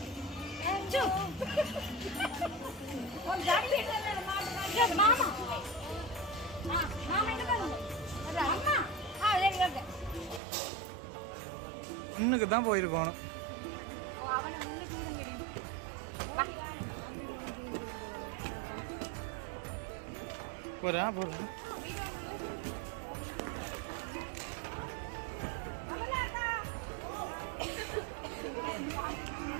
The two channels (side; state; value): left; drops out; at 10.4 s